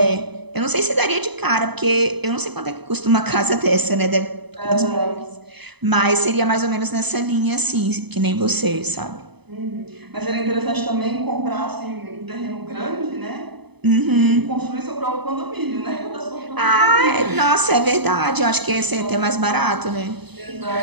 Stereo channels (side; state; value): left; late; 0.99 ms